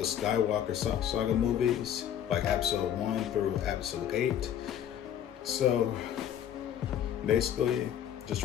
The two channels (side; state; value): right; quieter; 10.0 dB